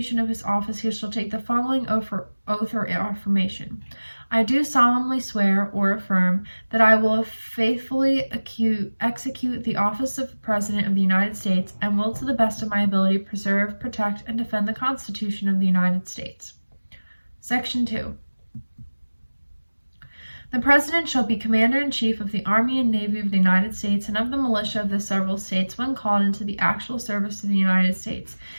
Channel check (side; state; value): both; inverted; correlation -1.00